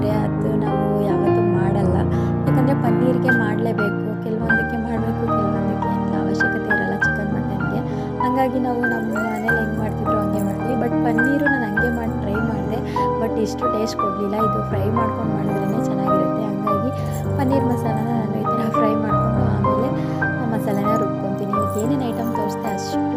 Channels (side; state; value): both; identical; correlation 1.00